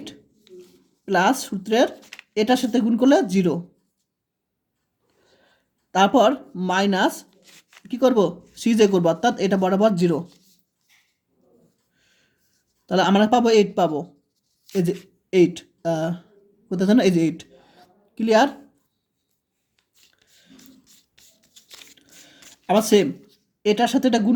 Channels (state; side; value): identical; both; correlation 1.00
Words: প্লাস সূত্রের এটার সাথে গুণ করলে 0, তারপর মাইনাস কি করব সিজে করব অর্থাৎ এটা বরাবর 0, তাহলে আমরা পাবো 8 পাবো, এই যে 8 কোথায় জানো এই যে 8, ক্লিয়ার। আবার সেম এটার সাথে এটা গুণ